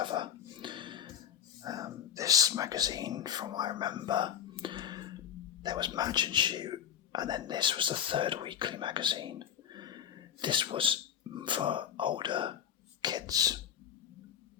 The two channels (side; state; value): right; quieter; 9.1 dB